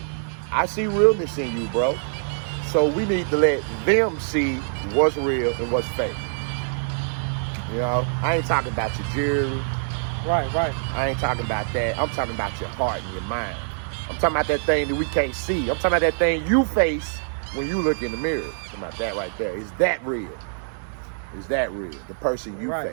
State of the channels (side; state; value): left; silent; digital silence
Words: I see realness in you, bro. So we need to let them see what's real and what's fake. You know, I ain't talking about your jewelry. Right. I ain't talking about that. I'm talking about your heart and your mind. I'm talking about that thing that we can't see. I'm talking about that thing you face when you look in the mirror. I'm talking about that right there. Is that real? Is that real? The person you